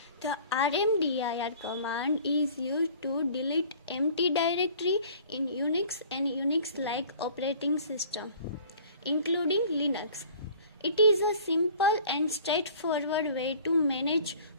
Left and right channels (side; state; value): both; inverted; correlation -0.49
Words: The RMDIR command is used to delete empty directory in Unix and Unix-like operating system, including Linux. It is a simple and straightforward way to manage